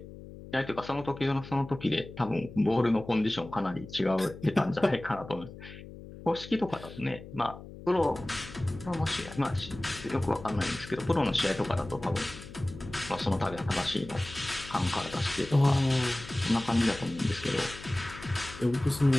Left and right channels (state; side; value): noise; left; hum, 15 dB below the sound